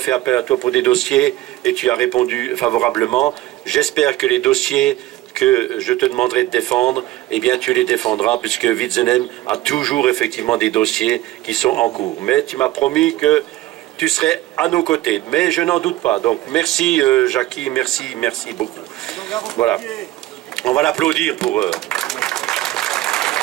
appel à toi pour des dossiers et tu as répondu favorablement. J'espère que les dossiers que je te demanderai de défendre, eh bien tu les défendras puisque Witzenheim a toujours effectivement des dossiers qui sont en cours. Mais tu m'as promis que tu serais à nos côtés. Mais je n'en doute pas. Donc merci Jackie, merci beaucoup. Voilà. On va l'applaudir pour...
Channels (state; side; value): quieter; left; 16.1 dB